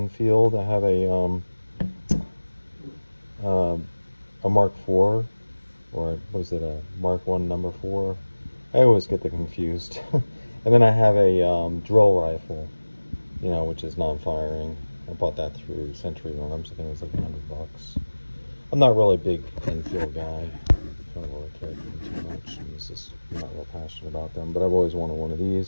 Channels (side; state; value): both; inverted; correlation -1.00